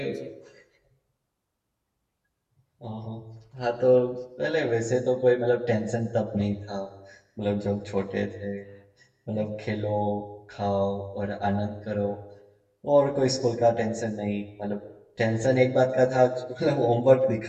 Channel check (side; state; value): both; identical; correlation 1.00